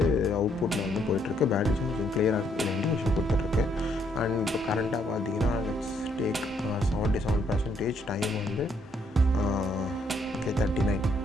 அவுட்புட்டில் வந்து போயிட்டுருக்கு. பேட்டரி சார்ஜிங் கிளியராக இதில் இண்டிகேஷன் கொடுத்துட்ருக்கு. அண்ட் இப்போ கரண்ட்டாக பார்த்தீங்கன்னா லெட்ஸ் டேக் 77% டைம் வந்து 39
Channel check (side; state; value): both; normal; correlation 0.71